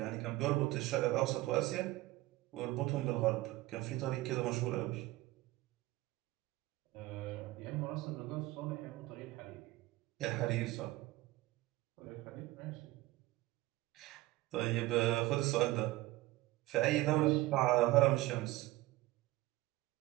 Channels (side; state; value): left; quieter; 18.4 dB